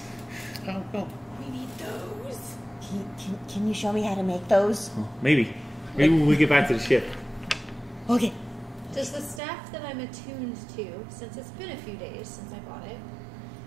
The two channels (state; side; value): drops out; left; at 9.4 s